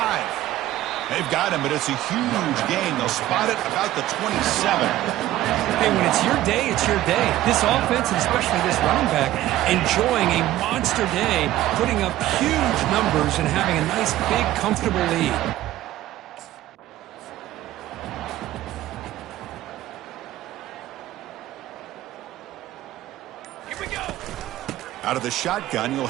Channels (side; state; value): left; quieter; 14.6 dB